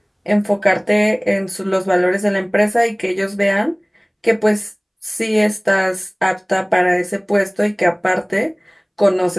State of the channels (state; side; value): identical; both; correlation 1.00